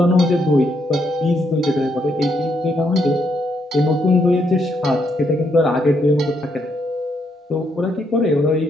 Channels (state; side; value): normal; both; correlation 0.76